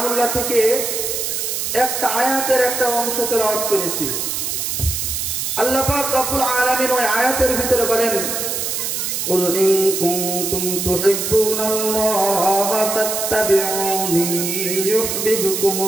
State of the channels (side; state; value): right; noise; hiss, 2 dB below the sound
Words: থেকে একটা আয়াতের একটা অংশ তেলাওয়াত করেছি। আল্লাহ পাক রব্বুল আলামিন ওই আয়াতের ভিতরে বলেন, কুল ইন কুনতুম তুহিব্বুনাল্লাহা ফাত্তাবিউনি